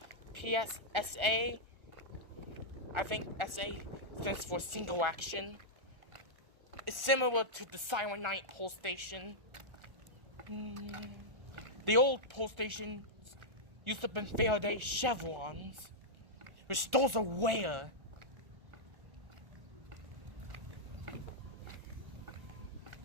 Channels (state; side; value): late; left; 1.4 ms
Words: PSSA. I think SA stands for single action. It's similar to the Silent Night pole station. The old pole station used to have been Faraday chevrons, which those are rare.